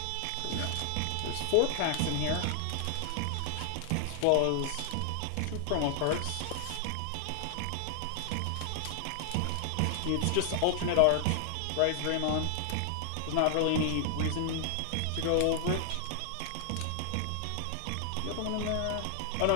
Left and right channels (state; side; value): different; both; correlation 0.00